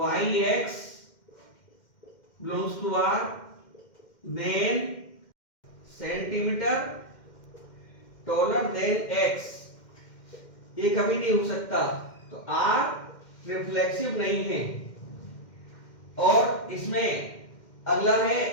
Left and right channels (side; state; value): right; late; 2.1 ms